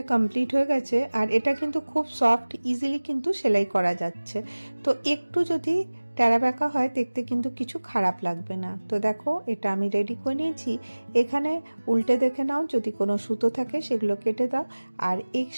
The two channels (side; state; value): both; inverted; correlation -1.00